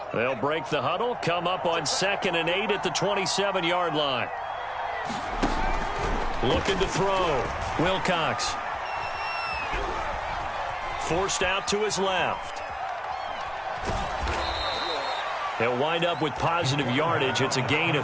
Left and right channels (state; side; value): identical; both; correlation 1.00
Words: They'll break the huddle, come up on 2nd and 8 at the 27-yard line. Looking to throw. Wilcox. Forced out to his left. He'll wind up with positive yardage. It's a gain